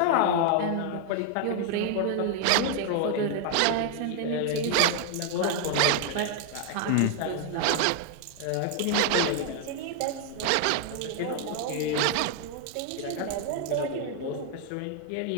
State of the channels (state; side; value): different; both; correlation 0.00